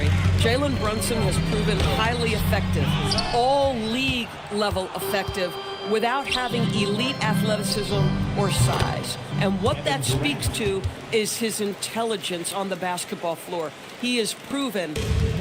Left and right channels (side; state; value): both; identical; correlation 1.00